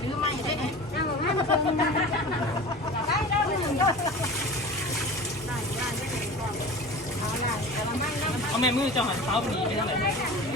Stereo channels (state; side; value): normal; both; correlation 0.36